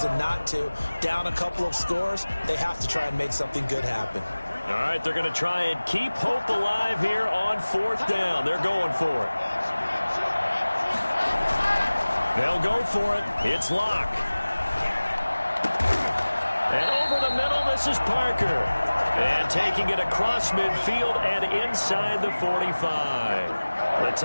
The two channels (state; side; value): inverted; both; correlation -1.00